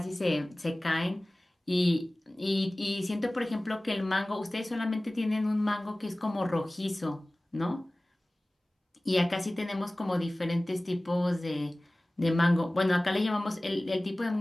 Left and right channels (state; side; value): normal; both; correlation 0.98